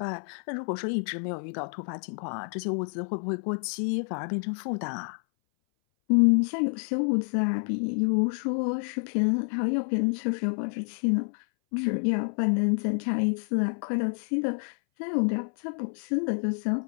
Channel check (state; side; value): silent; right; 58 dB below the other